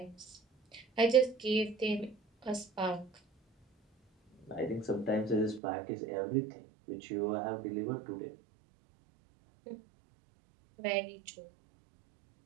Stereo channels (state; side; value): drops out; left; at 5.6 s